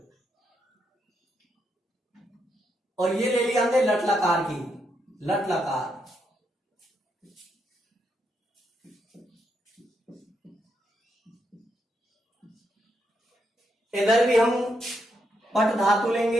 और ये ले ली हमने लट लकार की, लट लकार। इधर भी हम पट धातु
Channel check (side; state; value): both; normal; correlation 0.80